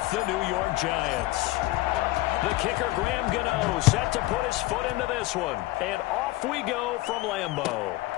the New York Giants. The kicker, Graham Gano, set to put his foot into this one, and off we go from Lambeau.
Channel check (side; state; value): right; quieter; 18.4 dB